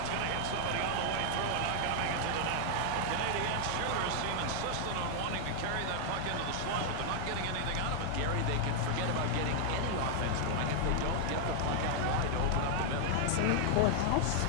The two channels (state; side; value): different; both; correlation 0.00